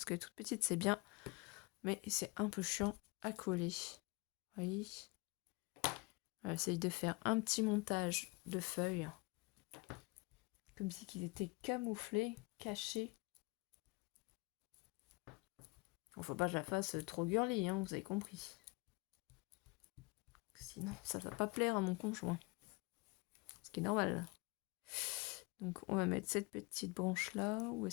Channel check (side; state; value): right; quieter; 26.1 dB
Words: que les toutes petites c'est bien, mais c'est un peu chiant à coller. Vous voyez ? J'essaye de faire un petit montage de feuilles, comme si qu'ils étaient camouflés, cachés. Bon, faut pas que je la fasse trop girly, hein, vous avez compris. Sinon, ça va pas plaire à mon conjoint. Ce qui est normal. Donc, on va mettre cette petite branche là. Ou